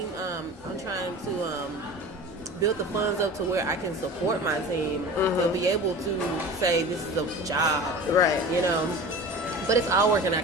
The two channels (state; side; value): normal; both; correlation 0.36